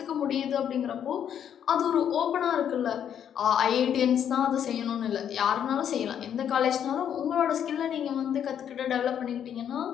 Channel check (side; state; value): right; quieter; 9.1 dB